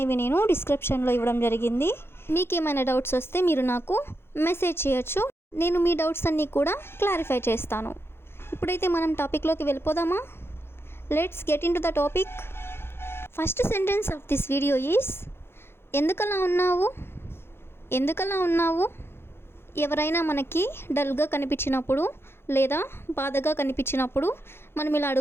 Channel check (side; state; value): right; late; 0.11 ms